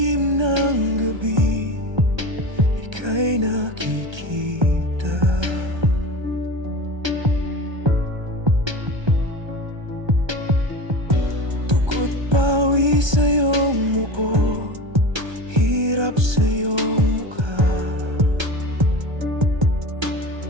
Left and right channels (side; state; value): left; late; 1.3 ms